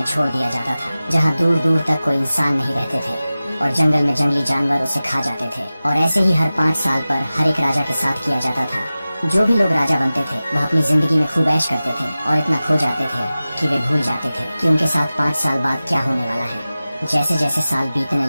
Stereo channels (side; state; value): both; inverted; correlation -0.96